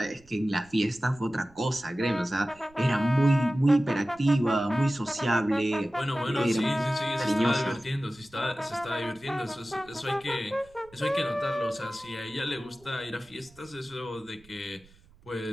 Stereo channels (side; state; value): right; noise; rumble, 27 dB below the sound